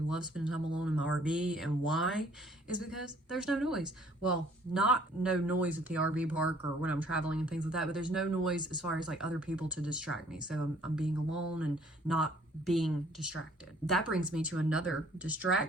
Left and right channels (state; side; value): normal; both; correlation 0.59